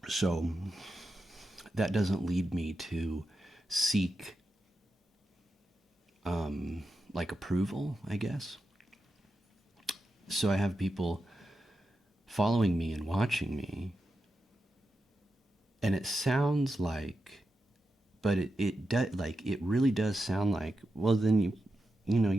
So that doesn't lead me to seek like approval, I guess. So I have people following me and watching me, and it sounds like, but it really does sound like, well, then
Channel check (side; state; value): both; normal; correlation 0.89